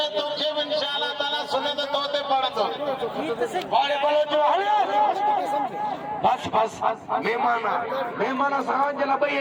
में तोखे इंशाअल्लाह ताला सुने तो तोते पड़तो बाड़े बलोच बस मेहमान साहब जला भई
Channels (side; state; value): both; identical; correlation 1.00